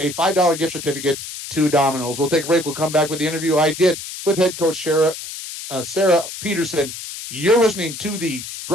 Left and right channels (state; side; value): noise; left; hiss, 10 dB below the sound